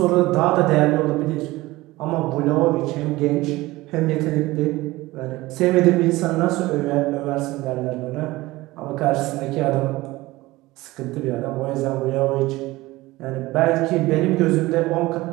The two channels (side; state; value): left; quieter; 19.3 dB